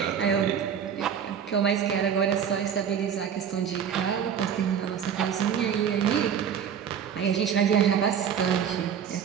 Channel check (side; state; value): left; quieter; 8.1 dB